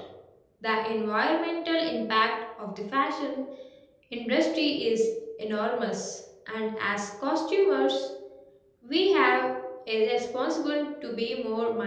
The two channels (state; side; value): identical; both; correlation 1.00